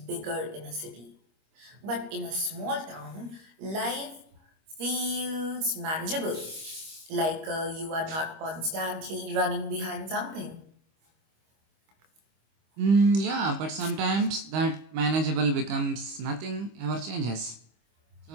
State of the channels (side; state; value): left; late; 25 ms